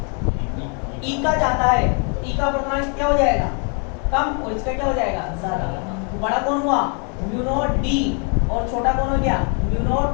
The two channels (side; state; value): right; quieter; 38.4 dB